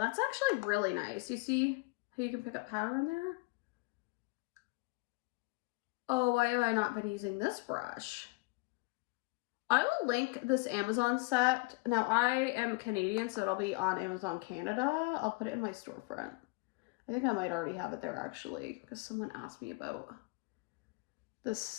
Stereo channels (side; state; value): right; quieter; 26.5 dB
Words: actually really nice. You see how you can pick up powder in there? Oh, why have I not been using this brush? I will link this Amazon set. Now, I am Canadian, so it'll be on Amazon Canada. I'll put it in my storefront. I think I might already have it there, actually, because someone asked me about this